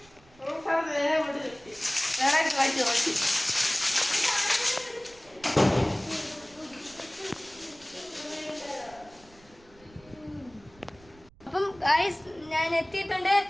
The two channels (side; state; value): right; noise; rumble, 26 dB below the sound